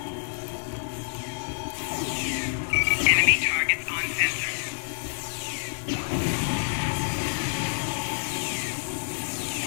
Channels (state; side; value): silent; right; digital silence